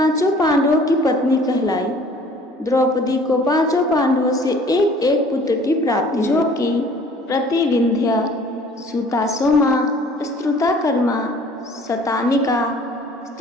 पांडवों की पत्नी कहलाई। द्रौपदी को 5 पांडवों से एक एक पुत्र की प्राप्ति, जो कि प्रतिविंध्य, सुतासोमा, स्त्रुताकर्मा, शतानिका,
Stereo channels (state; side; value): normal; both; correlation 0.52